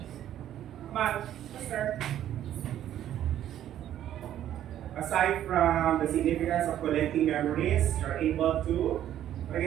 Come on, sir. Aside from the significance of collecting memories, you're able to, what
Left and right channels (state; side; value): quieter; left; 11.5 dB